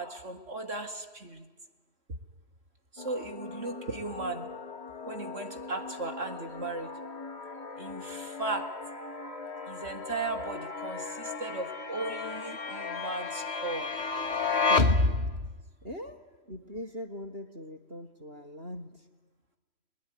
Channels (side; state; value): left; late; 3.1 ms